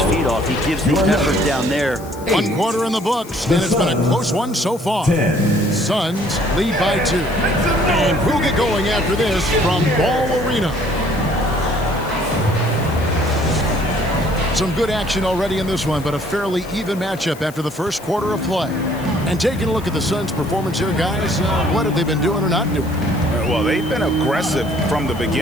feed off. He gives the effort down there. 1 quarter in the books, and it's been a close one so far. Suns lead by 2. And we'll get going after this from Ball Arena. Some good action already in this one, but a fairly even matchup after the first quarter of play. And taking a look at the Suns' performance here, guys, what have they been doing or not doing? Well, they've been aggressive from the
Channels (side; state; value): left; noise; hiss, 20 dB below the sound